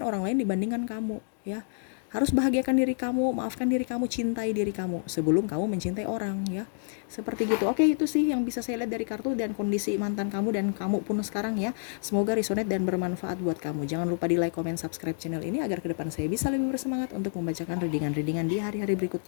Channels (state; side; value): silent; right; digital silence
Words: lain dibandingkan kamu ya. Harus bahagiakan diri kamu, maafkan diri kamu, cintai diri kamu sebelum kamu mencintai orang ya. Seperti gitu. Oke, itu sih yang bisa saya lihat dari kartu dan kondisi mantan kamu dan kamu pun sekarang ya. Semoga resonate dan bermanfaat buat kamu. Jangan lupa di like, comment, subscribe channel ini agar ke depan saya bisa lebih bersemangat untuk membacakan readingan-readingan di hari-hari